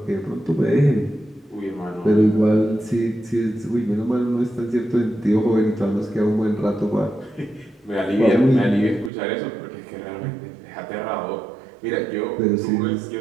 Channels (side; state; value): left; drops out; at 9.1 s